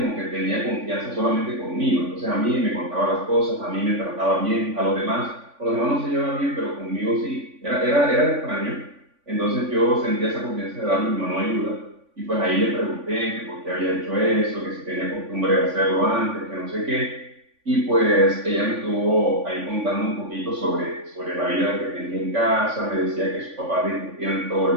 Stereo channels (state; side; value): late; left; 3.5 ms